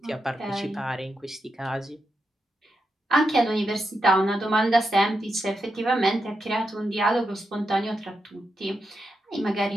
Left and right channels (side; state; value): both; normal; correlation 0.86